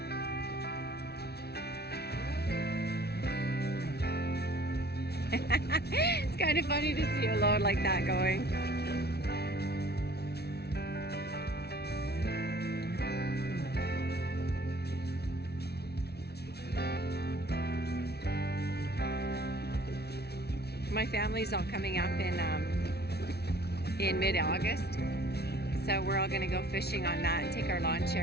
It's kind of funny to see a load like that going. My family's all coming up in mid-August, so we're all gonna go fishing on that and take our lawn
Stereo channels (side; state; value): right; late; 0.47 ms